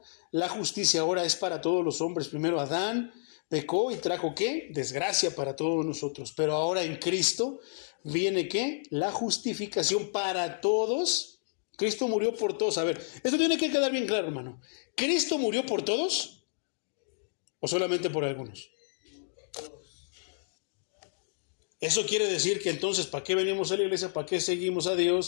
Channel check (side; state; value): right; silent; digital silence